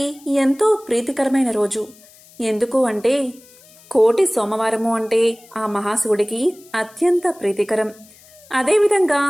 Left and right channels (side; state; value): left; noise; hiss, 25 dB below the sound